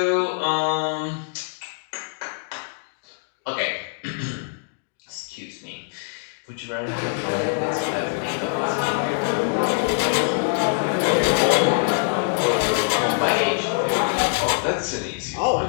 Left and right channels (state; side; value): silent; right; digital silence